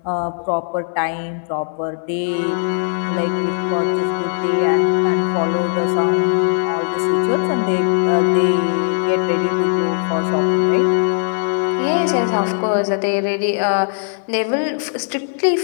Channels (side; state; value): right; silent; 62 dB below the other